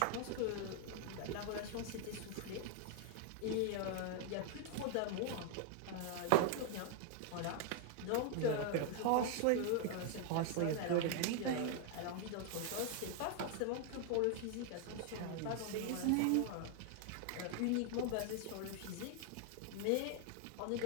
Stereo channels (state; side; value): different; both; correlation 0.00